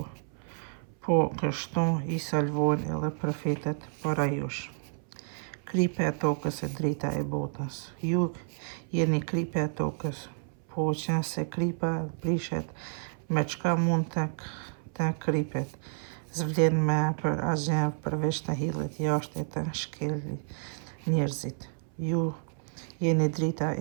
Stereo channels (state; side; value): silent; left; 58 dB below the other